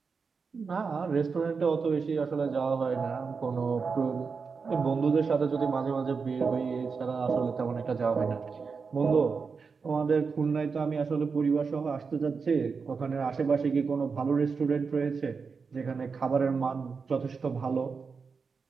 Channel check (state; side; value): quieter; left; 5.2 dB